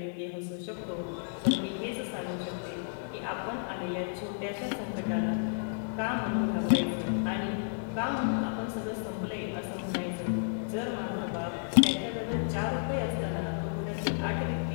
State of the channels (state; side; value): silent; right; digital silence